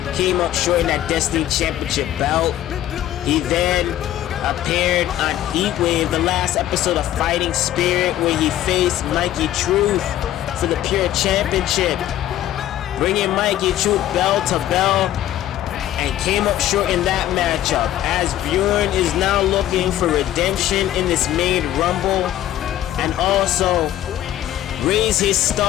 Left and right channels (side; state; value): right; quieter; 12.9 dB